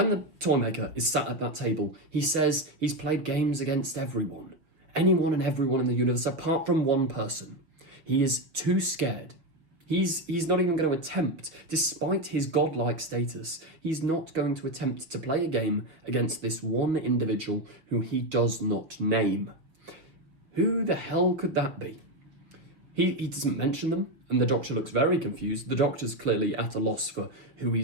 the Toymaker is sat at that table, he says he's played games against everyone. Anyone and everyone in the universe, apart from one person. He is too scared. He's not even going to attempt, despite his godlike status, he's not going to attempt to play a game against this one individual who he does not name. Who the hell could that be? He doesn't mention them, and the Doctor looks very confused. The Doctor's clearly at a loss for who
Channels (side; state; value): left; late; 6.0 ms